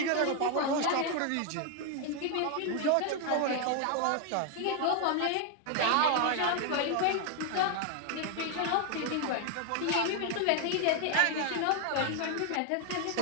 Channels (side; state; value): both; different; correlation 0.00